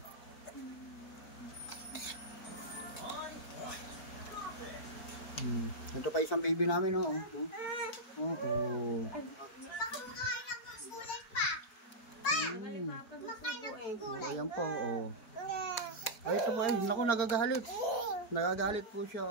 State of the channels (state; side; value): late; right; 4.5 ms